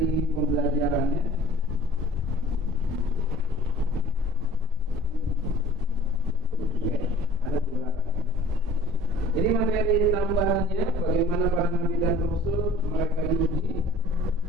materi tambahannya bagaimana para nabi dan rasul mereka diuji.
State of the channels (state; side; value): normal; both; correlation 0.47